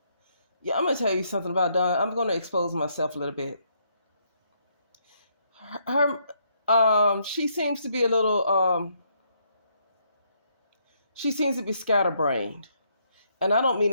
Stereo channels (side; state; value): both; inverted; correlation -0.73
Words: Yeah, I'm gonna tell you something about Dawn. I'm gonna expose myself a little bit. She seems to be a little. She seems to be scatterbrained, and I don't mean